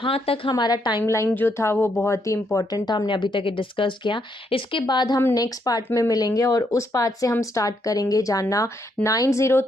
तक हमारा टाइमलाइन जो था वो बहुत ही इंपॉर्टेंट था, हमने अभी तक डिस्कस किया। इसके बाद हम नेक्स्ट पार्ट में मिलेंगे और उस पार्ट से हम स्टार्ट करेंगे जानना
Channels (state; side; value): normal; both; correlation 0.75